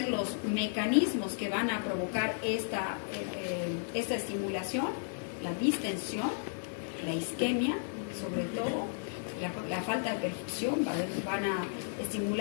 los mecanismos que van a provocar esta estimulación? La distensión, la isquemia, sobre todo, la falta de perfusión, van a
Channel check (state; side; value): silent; right; digital silence